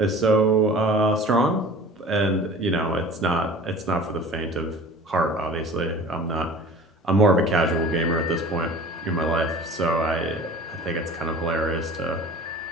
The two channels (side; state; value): both; normal; correlation 0.42